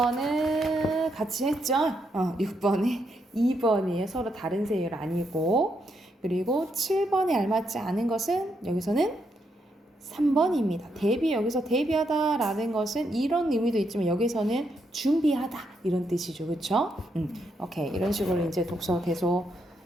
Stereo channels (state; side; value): normal; both; correlation 0.79